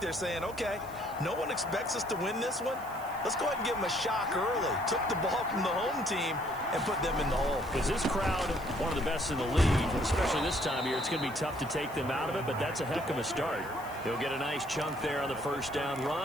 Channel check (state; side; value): noise; right; hiss, 20 dB below the sound